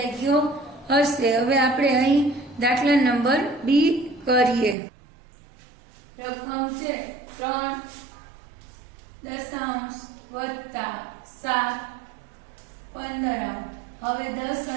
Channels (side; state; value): left; drops out; at 4.8 s